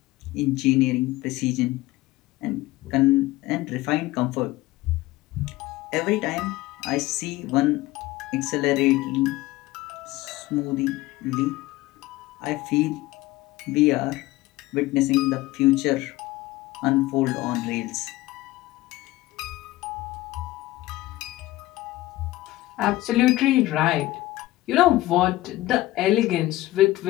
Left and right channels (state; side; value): quieter; right; 17.6 dB